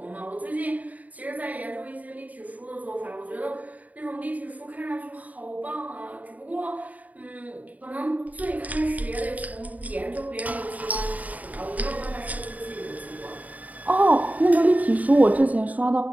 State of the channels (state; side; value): late; left; 0.073 ms